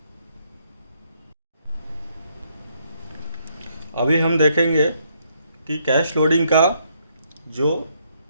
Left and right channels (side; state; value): both; inverted; correlation -0.73